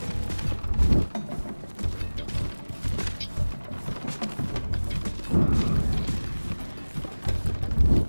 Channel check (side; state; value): both; inverted; correlation -1.00